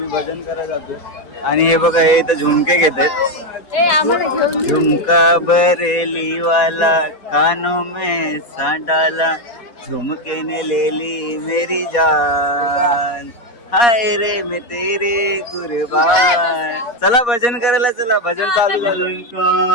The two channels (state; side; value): late; right; 4.2 ms